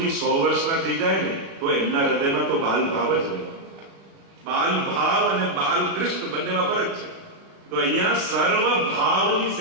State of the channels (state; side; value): late; left; 36 ms